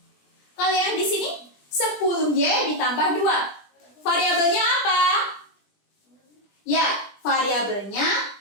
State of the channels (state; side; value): late; right; 20 ms